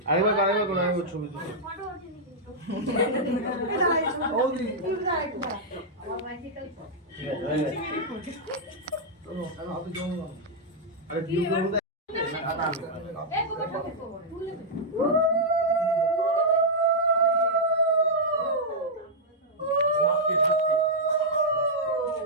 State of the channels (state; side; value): normal; both; correlation -0.07